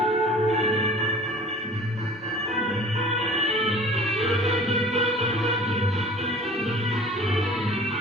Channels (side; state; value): both; normal; correlation 0.45